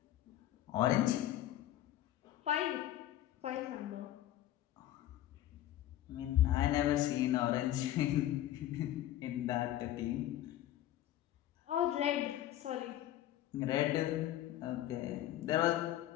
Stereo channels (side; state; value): right; quieter; 13.3 dB